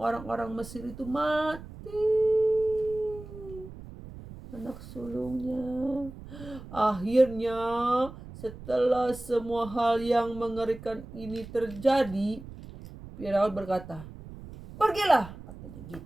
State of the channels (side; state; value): right; noise; rumble, 15 dB below the sound